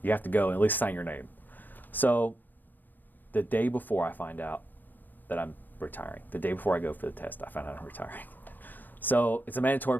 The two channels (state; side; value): late; right; 0.090 ms